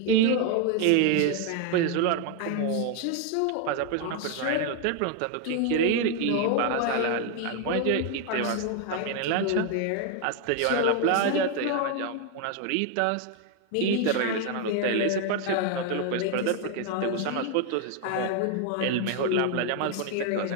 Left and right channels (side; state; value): both; different; correlation 0.01